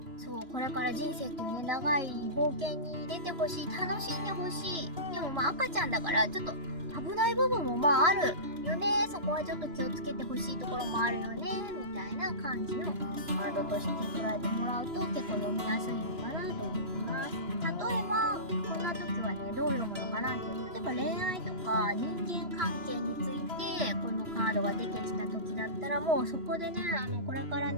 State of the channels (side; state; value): left; late; 2.9 ms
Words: そう、これから人生っていうね、長い冒険に出てほしい、楽しんでほしい。でもまあ赤ちゃんだから、ちょっと危ない部分もまああるよね。そこはちょっと気をつけてほしいところもあるよね。みたいな感じのワードとして捉えてもらうと結構読みやすいのかなと思います。例えば、こんな時はね、どう読むのかなっていう。例えば恋愛とか人間関係について、このカードが出てきた時だったら、もうそこでね、これから